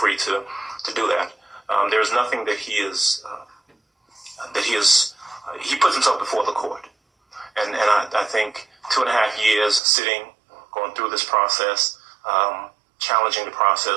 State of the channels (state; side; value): drops out; left; at 9.8 s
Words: to do that. There is nothing that he puts himself before the court. And I think 2.5 years sitting, going through this process, challenging the